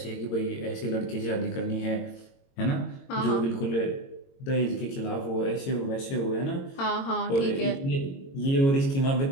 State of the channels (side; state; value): right; late; 22 ms